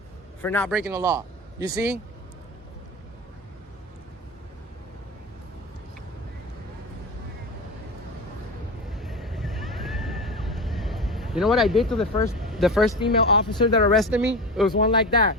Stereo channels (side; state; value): both; normal; correlation 0.25